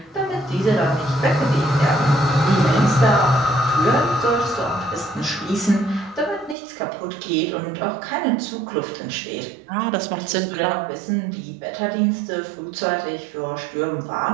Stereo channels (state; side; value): drops out; left; at 6.6 s